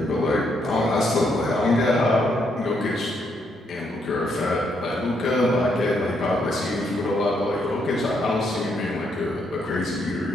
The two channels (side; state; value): both; normal; correlation 0.75